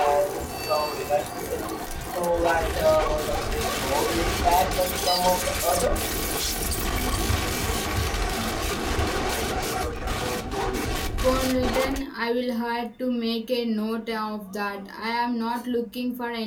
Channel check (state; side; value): identical; both; correlation 1.00